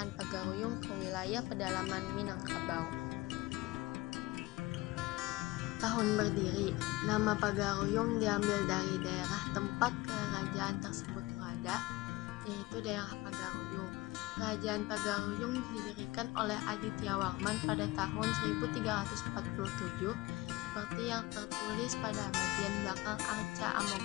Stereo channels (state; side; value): quieter; right; 20.4 dB